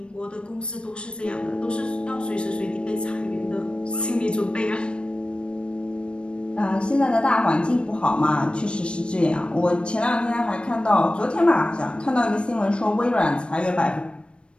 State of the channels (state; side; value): late; right; 0.056 ms